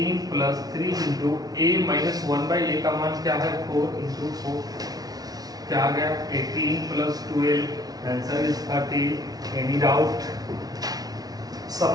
प्लस 3 इंटू a - 1/a का मान क्या है, 4 इंटू 4 क्या आ गया, 18 plus 12, answer is 30। Any doubt?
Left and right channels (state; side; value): late; left; 0.18 ms